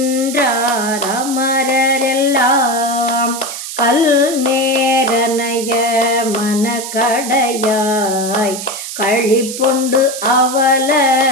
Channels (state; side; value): noise; right; hiss, 8 dB below the sound